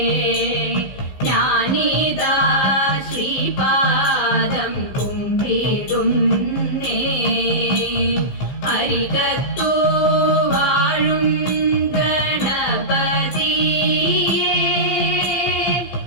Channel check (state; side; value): late; right; 15 ms